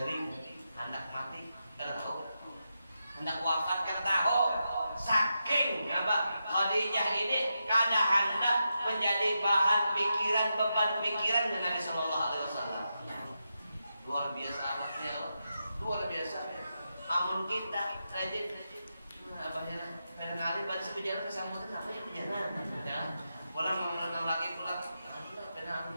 hendak mati karena tahu hendak wafat karena tahu saking apa Khadijah ini kada hendak menjadi bahan pikiran beban pikiran Nabi Sallallahu Alaihi Wasallam. Luar biasa amatnya, luar biasa. Amun kita rajin abahnya kadang-kadang pada sepejalan kesambutan apa ya pejalan ya pulang mengenal lagi pulang karena aku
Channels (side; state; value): both; inverted; correlation -0.87